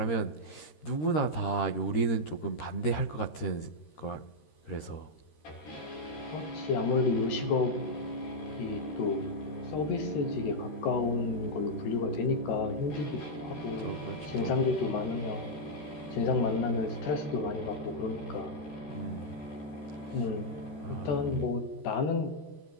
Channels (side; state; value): right; late; 13 ms